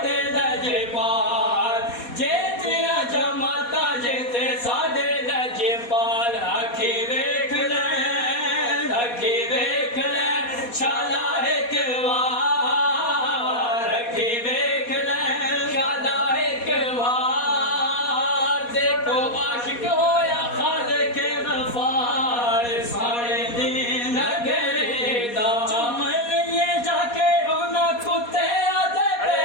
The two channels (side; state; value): right; late; 4.2 ms